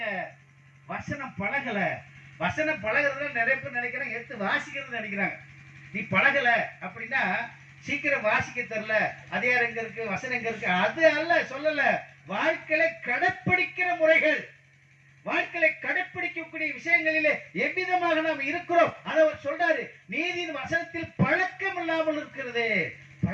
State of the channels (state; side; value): identical; both; correlation 1.00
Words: வசனம் பழகல. வசனம் பழகிறதுல நிறைய பேர் நினைக்கிறாங்க, எடுத்து வாசிக்கிறது நினைக்கிறாங்க. நீ பழகல அப்படின்னா சீக்கிரம் வாசிக்க தெரியல, அதிகாரம் எங்க இருக்கு, வசனம் எங்க இருக்கு, அது அல்ல சொல்லல. வாழ்க்கையை கடைப்பிடிக்கிற முறைகள், வாழ்க்கையை கடைப்பிடிக்கக்கூடிய விஷயங்களிலே எவ்விதமாக நாம் இருக்கிறோம் அதை அவர் சொல்றாரு. நீதியின் வசனத்தில் பழக்கம் இல்லாமல் இருக்கிறது,